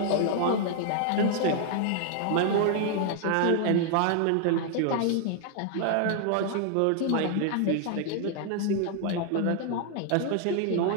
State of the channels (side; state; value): both; different; correlation 0.00